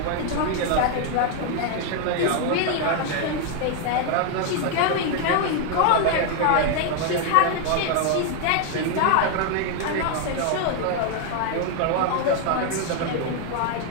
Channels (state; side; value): different; both; correlation 0.00